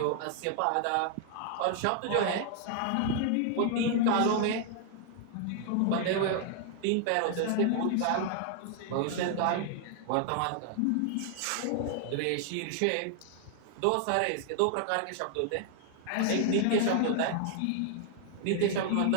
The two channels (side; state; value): both; different; correlation 0.00